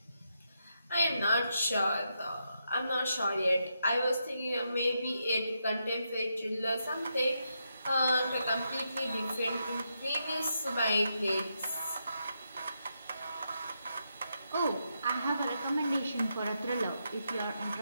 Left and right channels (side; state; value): both; inverted; correlation -0.83